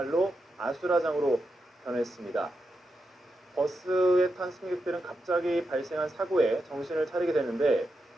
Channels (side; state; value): both; normal; correlation 0.87